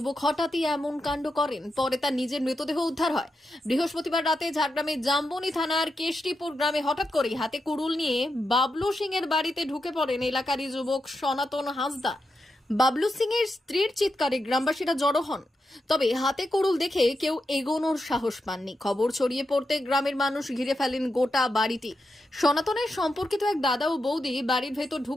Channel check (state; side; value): normal; both; correlation 0.86